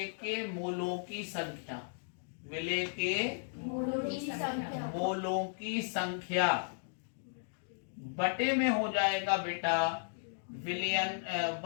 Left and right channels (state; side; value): silent; right; digital silence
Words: के मोलों की संख्या। विलेय के मोलों की संख्या बटे में हो जाएगा बेटा विलयन,